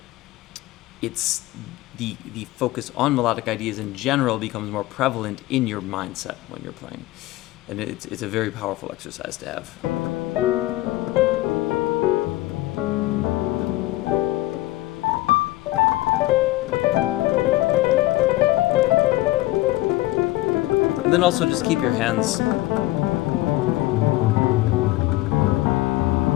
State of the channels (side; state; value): right; quieter; 17.9 dB